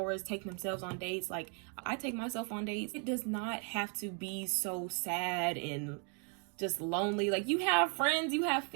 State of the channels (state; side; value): quieter; left; 39.5 dB